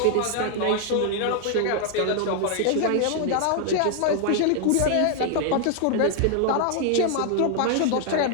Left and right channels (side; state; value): both; different; correlation 0.00